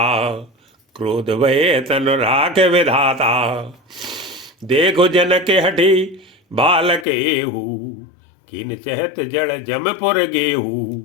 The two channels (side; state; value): right; drops out; at 7.1 s